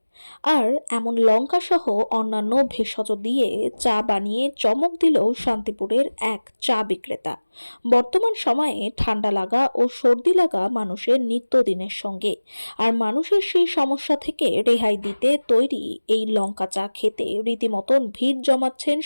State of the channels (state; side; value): inverted; both; correlation -1.00